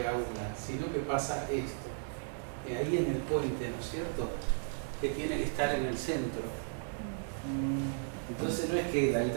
una, sino que pasa esto. Ahí en el puente, ¿no es cierto? Que tiene que estar en el centro. Entonces no es que la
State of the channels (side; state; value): left; silent; digital silence